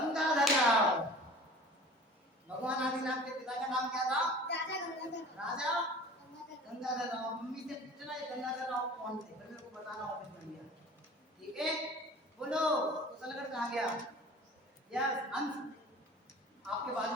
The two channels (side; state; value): both; normal; correlation 0.43